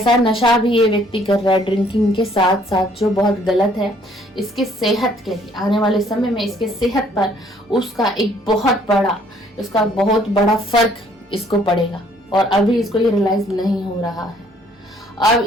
नशा भी ये व्यक्ति कर रहा है ड्रिंकिंग के साथ साथ जो बहुत गलत है। इसके सेहत के लिए आने वाले समय में इसके सेहत पर उसका बहुत बड़ा फर्क इसको पड़ेगा और अभी इसको ये रियलाइज नहीं हो रहा है। अब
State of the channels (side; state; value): both; normal; correlation 0.62